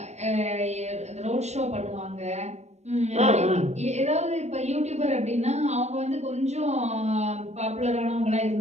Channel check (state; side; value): late; left; 0.32 ms